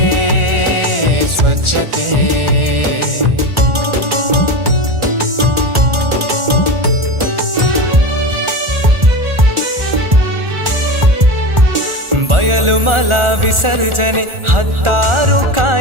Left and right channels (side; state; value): left; late; 1.4 ms